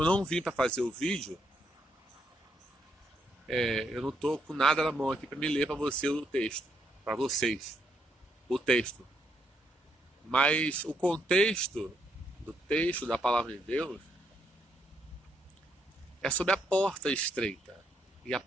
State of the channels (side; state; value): both; normal; correlation 0.75